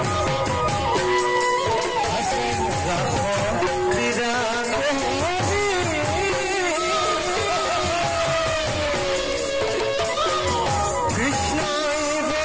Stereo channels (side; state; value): both; identical; correlation 1.00